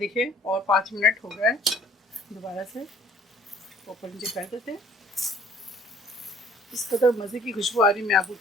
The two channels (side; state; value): both; normal; correlation 0.54